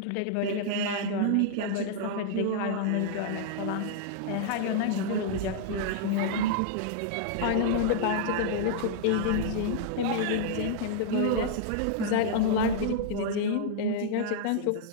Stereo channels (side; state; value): both; different; correlation -0.01